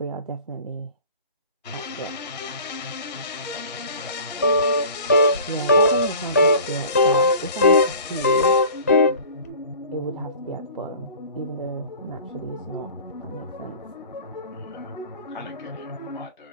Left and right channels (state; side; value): inverted; both; correlation -0.43